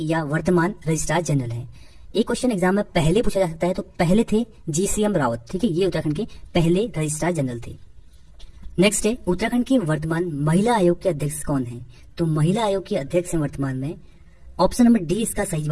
या वर्तमान रजिस्ट्रार जनरल है। एक क्वेश्चन एग्जाम में पहले पूछा जा सकता है, तो पहले थे GCM रावत। ठीक है, ये उत्तराखंड के पहले रजिस्ट्रार जनरल थे। नेक्स्ट है उत्तराखंड के वर्तमान महिला आयोग के अध्यक्ष कौन है? तो महिला आयोग के अध्यक्ष हैं वर्तमान में, ऑप्शन नंबर डी इसका सही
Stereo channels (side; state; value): both; identical; correlation 1.00